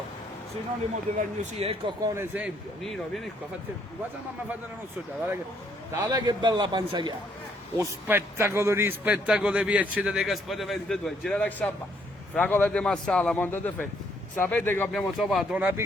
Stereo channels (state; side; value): normal; both; correlation 0.69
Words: sinonimo dell'agnosia, ecco qua un esempio. Nino, vieni qua, guarda mamma fa della nostra già, guarda che bella panza che ha. Lo spettacolo di spettacolo di Piacere dei Gaspari 22, gira la sabba, fragole di Massala, Monte de Fe. Sapete che abbiamo trovato una